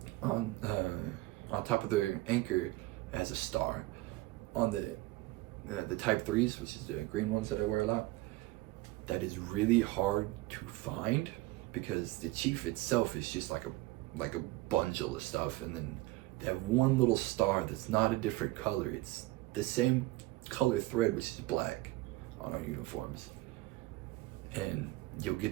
on top of their anchor, it has a star. On the Type 3s, which is the green ones that I wear a lot, that is really hard to find, because the chief itself is just like a bundle of stuff, and then they have one little star that's not a different color. It's the same color thread, which is black, on our uniforms. And you'll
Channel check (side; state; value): left; quieter; 19.3 dB